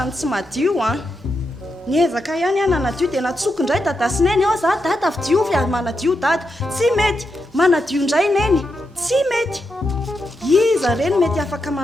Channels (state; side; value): normal; both; correlation 0.85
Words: ny tsy madio niezaka ihany nanadio dia natsoky indray dadasineny ao za dada fi diovy manadio dada tsy mety manadio indray neny tsy mety iza reny mety afaka